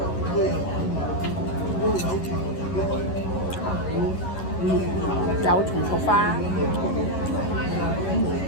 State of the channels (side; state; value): right; late; 11 ms